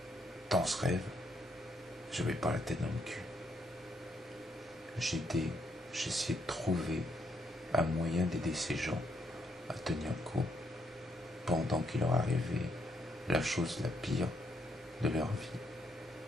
dans ce rêve, je n'avais pas la tête dans le cul. J'essayais de trouver un moyen d'aider ces gens à tenir le coup pendant qu'il leur arrivait la chose la pire de leur vie.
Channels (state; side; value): normal; both; correlation 0.75